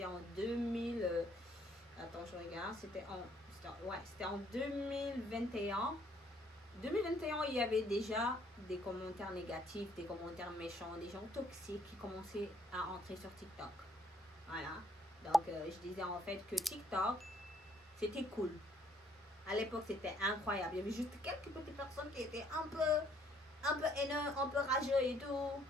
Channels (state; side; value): normal; both; correlation 0.65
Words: en 2000. Attends, je regarde. C'était en 2021. 2021, il y avait déjà des commentaires négatifs, des commentaires méchants, des gens toxiques qui commençaient à entrer sur TikTok. Voilà. Donc, je disais en fait que TikTok, c'était cool. À l'époque, c'était incroyable. Il y avait juste quelques petites personnes qui étaient un peu haineux, un peu rageux et tout.